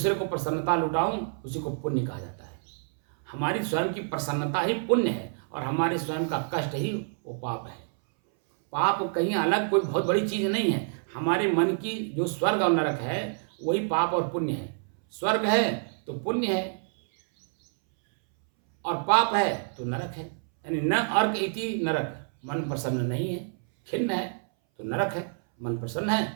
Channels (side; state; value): left; silent; 60 dB below the other